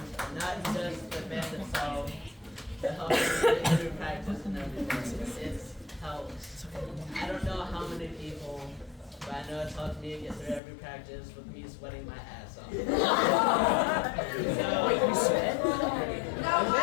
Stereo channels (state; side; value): drops out; right; at 10.6 s